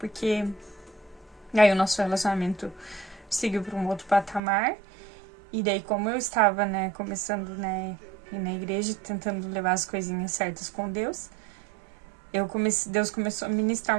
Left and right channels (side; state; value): left; drops out; at 4.4 s